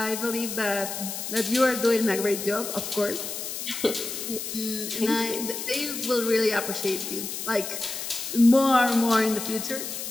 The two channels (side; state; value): left; noise; hiss, 6 dB below the sound